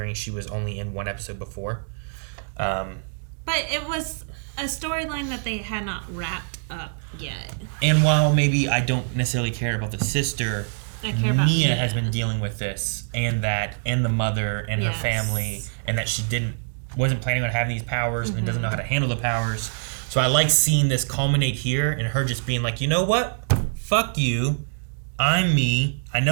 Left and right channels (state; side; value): silent; left; digital silence